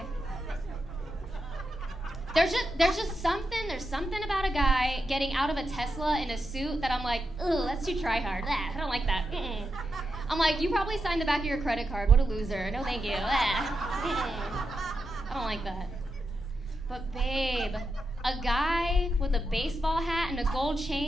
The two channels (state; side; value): normal; both; correlation 0.87